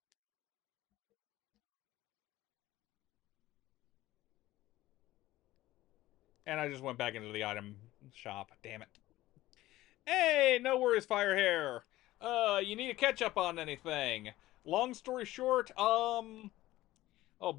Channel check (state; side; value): quieter; right; 16.4 dB